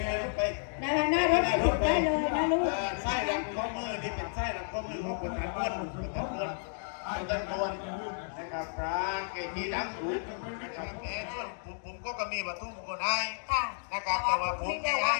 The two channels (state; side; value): silent; right; digital silence